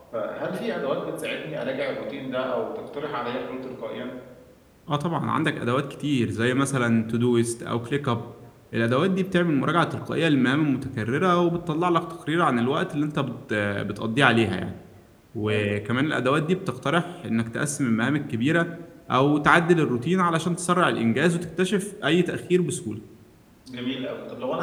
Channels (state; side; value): identical; both; correlation 1.00